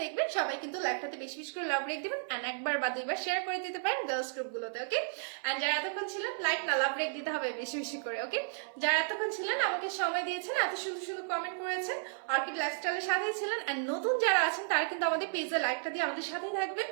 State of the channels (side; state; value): left; silent; 55 dB below the other